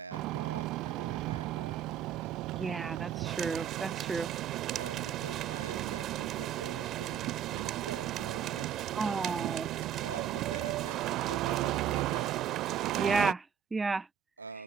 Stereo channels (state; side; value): quieter; left; 8.7 dB